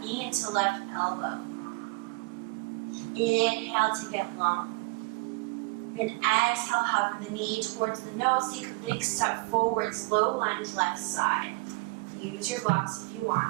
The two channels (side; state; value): left; quieter; 27.2 dB